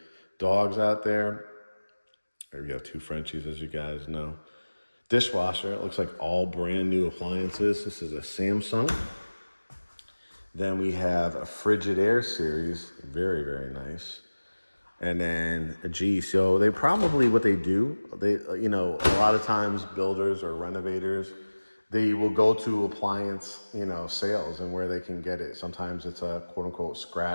dogs out there. Or you have 2 Frenchies, as you guys know. Dishwasher, it looks like all brand new appliances. This is a Samsung. Then we have a Frigidaire series, very, very nice. And then so they probably, what they do, a lot of times builders or renovators, they will go to appliance, sales and where they can get it. Sometimes it's a quote unquote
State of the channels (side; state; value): both; inverted; correlation -1.00